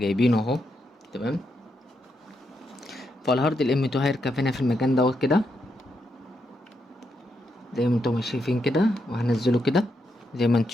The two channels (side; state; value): both; normal; correlation 0.81